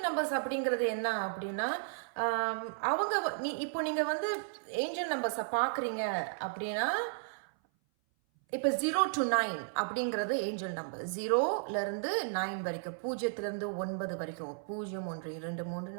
நம்பர்ஸ் அப்படிங்கிறது என்ன அப்படின்னா, அவங்க இப்போ நீங்கள் ஏஞ்சல் நம்பர்ஸை பார்க்குறீங்க அப்படின்னா, இப்போ 0 to 9 அப்படிங்கிறது ஏஞ்சல் நம்பர். 0லேருந்து 9 வரைக்கும், 0லேருந்து 9 வரைக்கும், 0 1 2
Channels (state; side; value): silent; left; 55 dB below the other